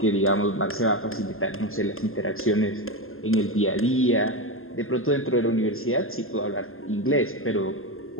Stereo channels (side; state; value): right; late; 0.61 ms